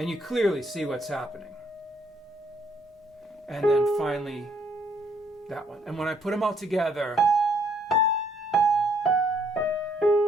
you clearly see what's happening. And then finally, that one. And when I put them all together,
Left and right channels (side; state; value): both; normal; correlation 0.68